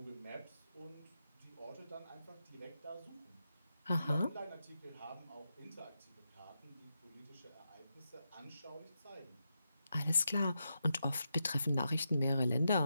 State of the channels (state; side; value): inverted; both; correlation -0.86